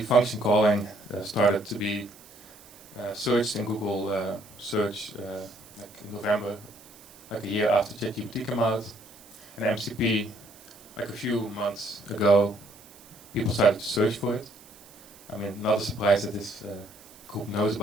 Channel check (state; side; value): noise; right; hiss, 23 dB below the sound